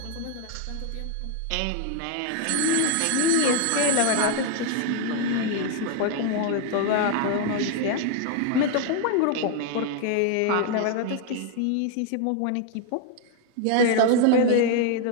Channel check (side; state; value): both; different; correlation 0.00